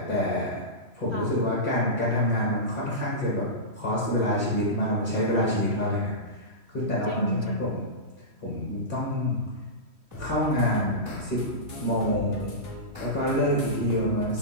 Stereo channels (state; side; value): late; left; 3.1 ms